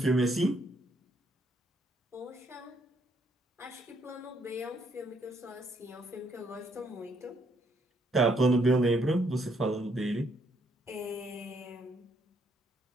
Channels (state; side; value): normal; both; correlation 0.71